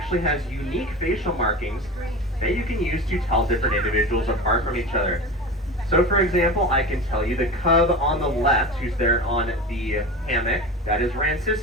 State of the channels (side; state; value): both; normal; correlation 0.30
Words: has unique facial markings that you can use to tell different individuals apart from each other. So, for example, I can tell you the cub on the left, who's there on the hammock, that is